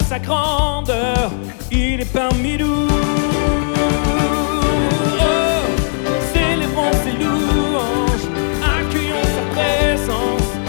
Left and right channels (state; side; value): silent; right; 68 dB below the other